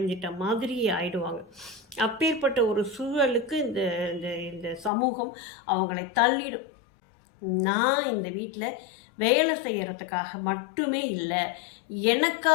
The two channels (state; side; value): drops out; right; at 4.9 s